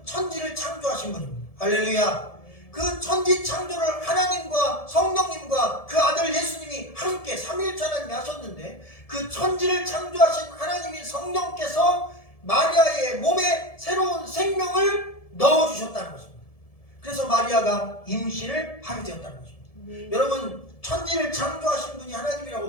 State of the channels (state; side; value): late; right; 1.7 ms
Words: 천지를 창조하신 분입니다. 할렐루야. 그 천지 창조를 하나님과 성령님과 그 아들 예수님이 함께 삼위일체 하나님이 하셨는데 그 천지를 창조하신 하나님인 성령께서 마리아의 몸에 새로운 생명을 넣어주셨다는 것입니다. 그래서 마리아가 임신을 하게 되었다는 것입니다. 여러분 천지를 창조하신 분이